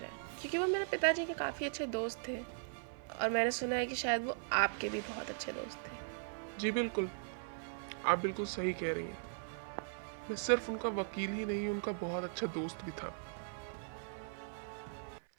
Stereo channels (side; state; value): left; silent; 52 dB below the other